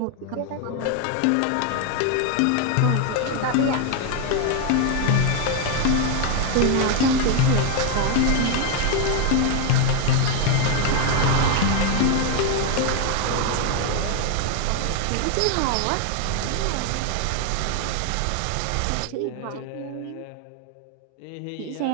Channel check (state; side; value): different; both; correlation 0.01